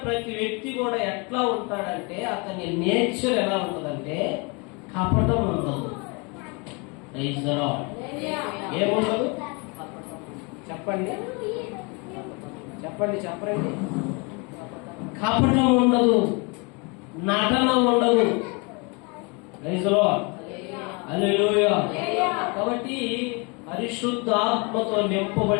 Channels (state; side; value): quieter; right; 30.7 dB